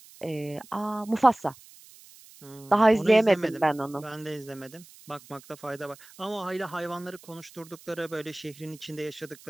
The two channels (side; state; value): right; noise; hiss, 22 dB below the sound